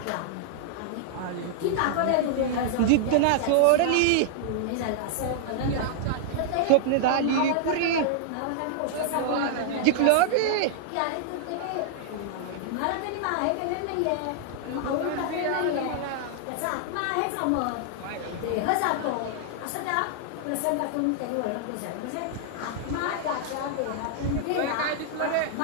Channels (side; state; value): both; different; correlation -0.01